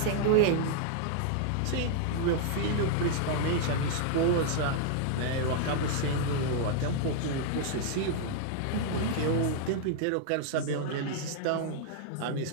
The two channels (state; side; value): different; both; correlation 0.00